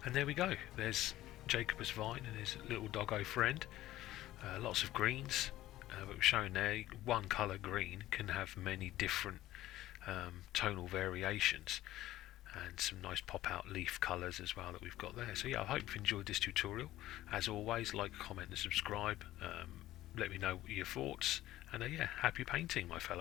And there we go, there's Jacobus Vyne and his little doggo friend. Lots of greens, but we're showing there one colour green can have many different tonal variations, and some nice pop out leaf colours as well that we've got there. So yeah, I hope you've enjoyed this tutorial. As always, like, comment and subscribe. Let me know your thoughts, and yeah, happy painting, my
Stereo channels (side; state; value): right; quieter; 15.1 dB